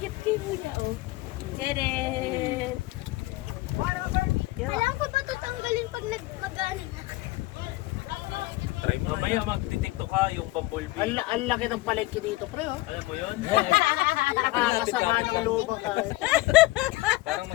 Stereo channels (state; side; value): quieter; right; 19.4 dB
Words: Tadam! Kailangan ko ba ito tanggalin pag mag-ano na? Try mo. Mamaya magtitiktok ka yung bumblebee. Ang laki ng palengke dito, pre, oh. Alam mo yun? Nakakasama ng lubang ka. Parang